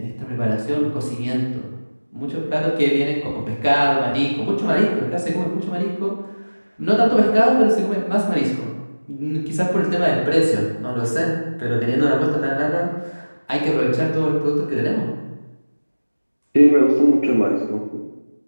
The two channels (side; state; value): both; inverted; correlation -1.00